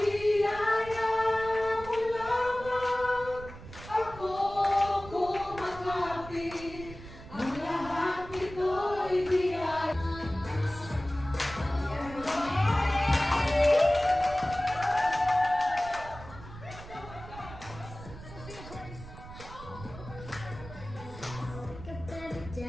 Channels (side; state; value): right; noise; rumble, 14 dB below the sound